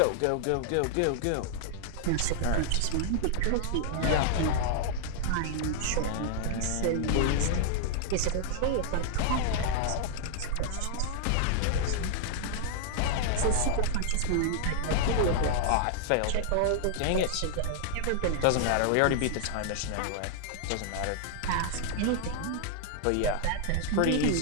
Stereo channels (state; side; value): different; both; correlation -0.01